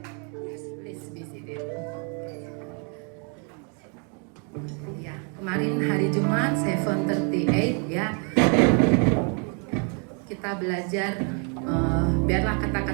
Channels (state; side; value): quieter; left; 38.4 dB